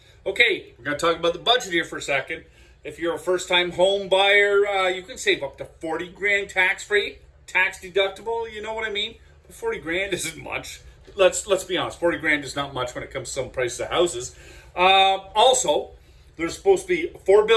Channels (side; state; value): both; identical; correlation 1.00